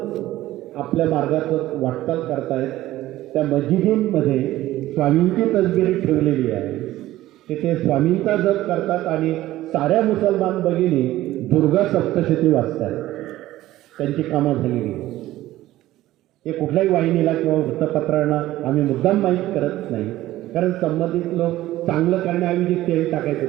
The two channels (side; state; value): left; quieter; 15.5 dB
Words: आपल्या मार्गाचं वाटचाल करतायत. त्या मस्जिदींमध्ये स्वामींची तसबिरी ठेवलेली आहे. तिथे स्वामींचा जप करतात आणि साऱ्या मुसलमान भगिनी दुर्गा सप्तशती वाचतात. त्यांची कामं झालेली. हे कुठल्याही वाहिनीला किंवा वृत्तपत्रांना आम्ही मुद्दाम माहीत करत नाही, कारण संबंधित लोक चांगलं करण्याऐवजी तेल